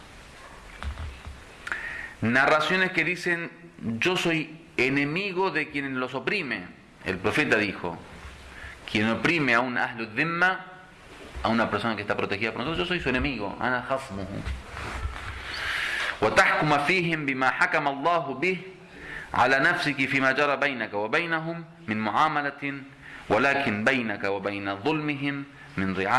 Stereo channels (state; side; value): identical; both; correlation 1.00